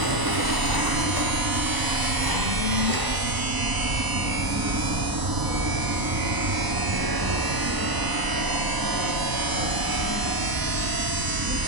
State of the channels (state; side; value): late; left; 1.0 ms